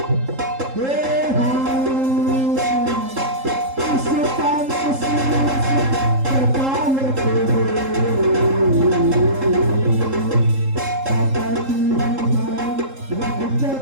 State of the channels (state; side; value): late; left; 3.7 ms